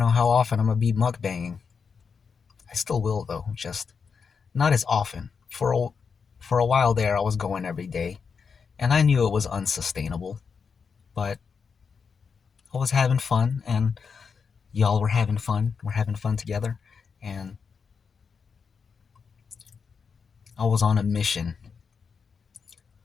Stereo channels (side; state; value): right; quieter; 5.8 dB